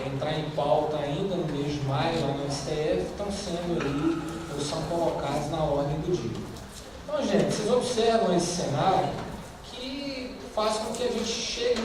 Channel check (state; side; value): identical; both; correlation 1.00